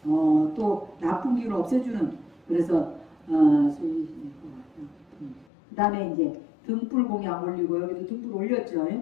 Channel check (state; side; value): drops out; right; at 5.5 s